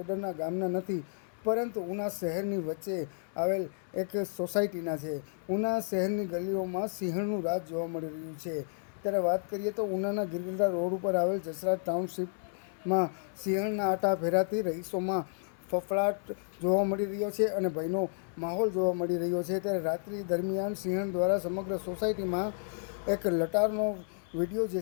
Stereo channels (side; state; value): right; silent; 57 dB below the other